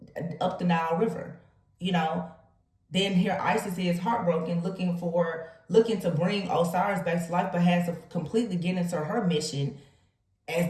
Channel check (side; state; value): both; identical; correlation 1.00